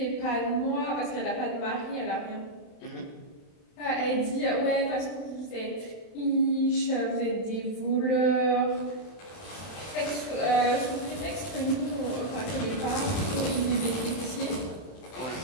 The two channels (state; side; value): late; right; 31 ms